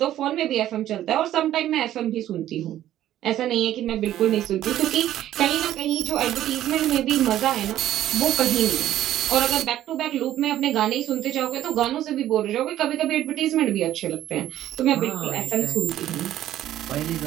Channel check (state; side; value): quieter; left; 12.7 dB